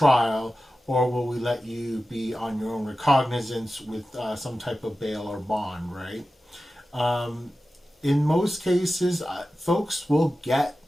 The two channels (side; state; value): both; normal; correlation 0.94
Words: or will we let you be on your own recognizance with some type of bail or bond, right? In most cases, folks will get